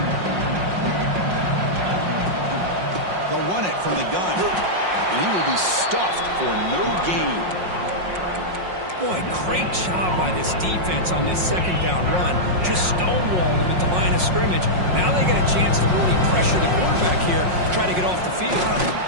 They'll run it from the gun. And he will be stuffed for no gain. Boy, great job by this defense on this 2nd down run. Just stonewalled him at the line of scrimmage. Now they get a chance to really pressure the quarterback here to try to get off the field.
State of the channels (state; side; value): late; left; 5.5 ms